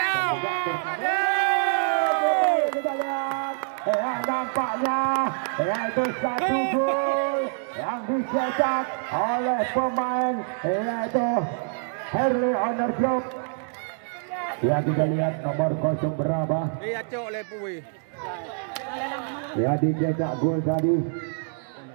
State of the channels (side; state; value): left; silent; digital silence